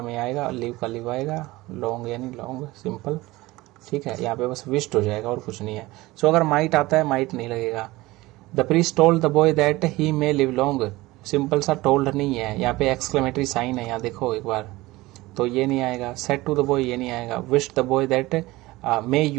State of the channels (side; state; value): left; quieter; 19.6 dB